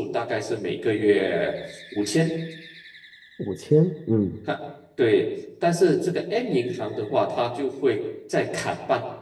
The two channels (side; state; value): both; identical; correlation 1.00